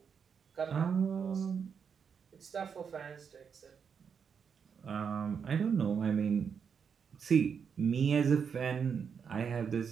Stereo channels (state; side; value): quieter; left; 6.7 dB